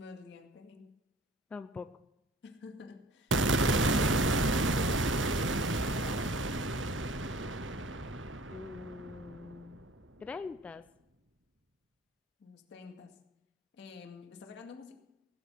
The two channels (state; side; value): normal; both; correlation 0.48